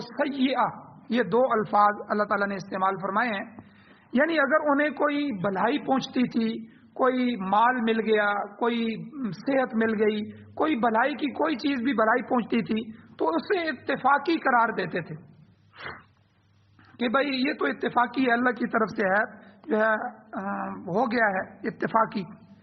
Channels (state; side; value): identical; both; correlation 1.00